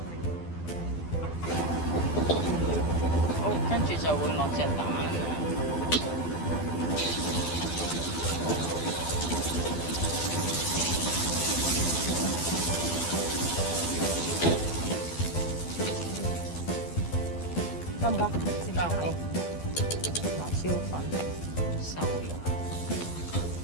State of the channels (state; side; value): late; right; 12 ms